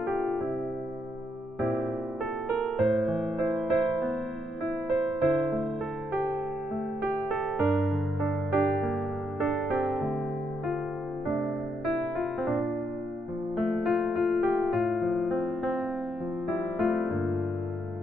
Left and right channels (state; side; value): normal; both; correlation 0.78